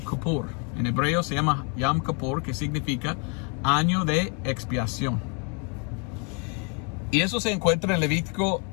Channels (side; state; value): right; quieter; 36.4 dB